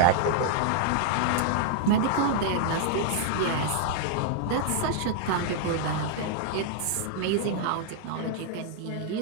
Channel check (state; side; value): different; both; correlation 0.00